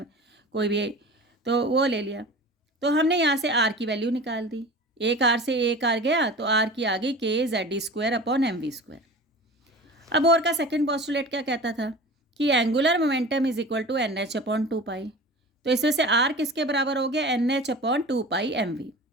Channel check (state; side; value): normal; both; correlation 0.37